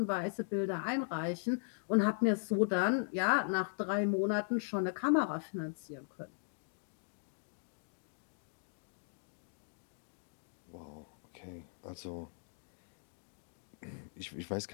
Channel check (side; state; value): right; silent; digital silence